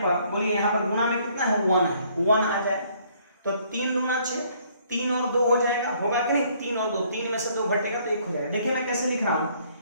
बोलिए यहाँ पर गुना में कितना है, 1 है, 1 आ जाए तो 3 दूना 6, 3 और 2 हो जाएगा, होगा कि नहीं, 3 और 2, 3 में से 2 घटेगा तो 1 हो जाएगा। देखिए मैं कैसे लिख रहा हूं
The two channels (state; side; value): inverted; both; correlation -0.63